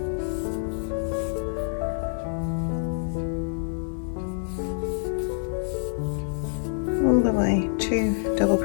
All the way, 2 double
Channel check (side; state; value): right; silent; digital silence